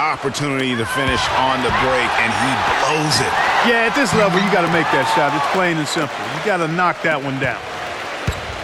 to finish on the break, and he blows it. Yeah, at this level, you got to make that shot. It's plain and simple. You got to knock that one down.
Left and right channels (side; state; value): both; identical; correlation 1.00